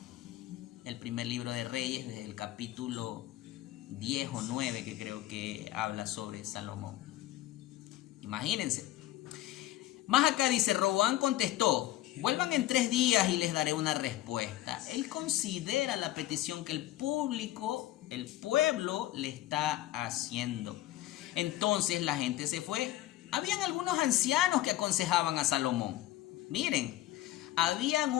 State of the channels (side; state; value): right; quieter; 14.9 dB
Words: el primer libro de Reyes, desde el capítulo 10 o 9, que creo que habla sobre Salomón. Imagínense. Más acá dice: Roboam contestó: vuelvan en 3 días y les daré una respuesta. Él considera la petición que el pueblo le está haciendo. Entonces la gente se fue. Habían algunos ancianos que aconsejaban a Salomón. Miren, habían